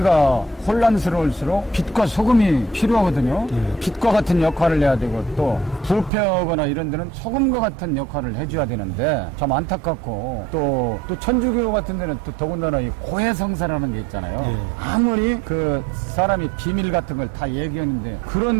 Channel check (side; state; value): left; drops out; at 6.1 s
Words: 혼란스러울수록 빛과 소금이 필요하거든요. 빛과 같은 역할을 해야 되고 또 부패하거나 이런 데는 소금과 같은 역할을 해줘야 되는데 참 안타깝고 또 천주교 같은 데는 또 더군다나 이 고해성사라는 게 있잖아요. 아무리 그 사람이 비밀 같은 걸 다 얘기하는데